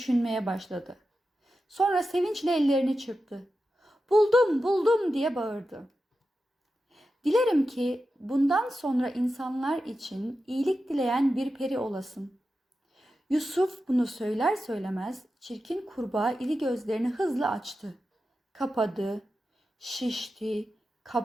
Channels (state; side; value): normal; both; correlation 0.91